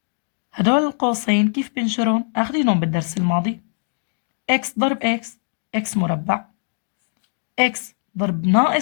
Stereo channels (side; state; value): right; silent; 64 dB below the other